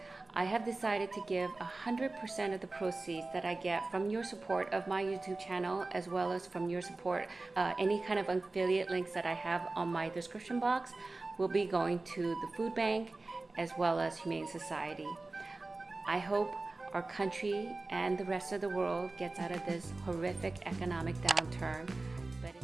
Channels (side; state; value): left; quieter; 3.3 dB